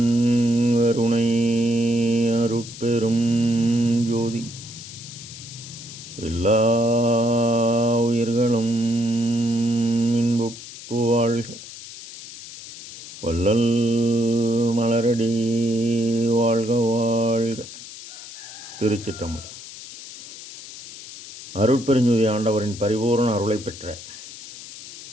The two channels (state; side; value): noise; left; hiss, 14 dB below the sound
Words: கருணை அருட்பெரும் ஜோதி எல்லா உயிர்களும் இன்புற்று வாழ்க. வள்ளல் மலரடி வாழ்க வாழ்க. திருச்சிற்றம்பலம். அருட்பெருஞ்சோதி ஆண்டவரின் பரிபூரண அருளை பெற்ற